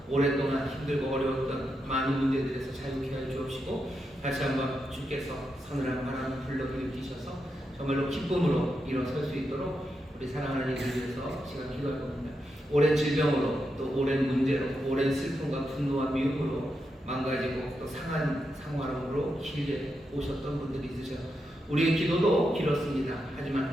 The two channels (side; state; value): both; normal; correlation 0.85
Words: 오랫동안 힘들고 어려웠던 많은 문제들에서 자유케 하여 주옵시고 다시 한번 주께서 서늘한 바람을 불러일으키셔서 정말로 기쁨으로 일어설 수 있도록 우리 사랑하는 이들 위해서 시간 기도할 겁니다. 오랜 질병으로 또 오랜 문제로 오랜 슬픔과 분노와 미움으로 망가지고 또 상한 상황으로 길게 오셨던 분들이 있으셔. 우리의 기도도 길었습니다.